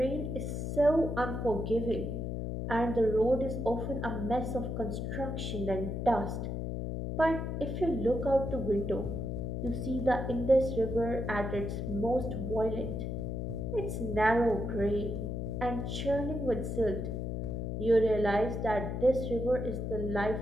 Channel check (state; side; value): noise; left; hum, 3 dB below the sound